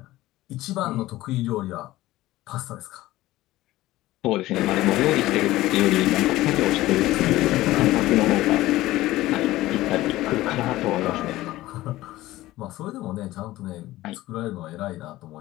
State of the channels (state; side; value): quieter; right; 16.8 dB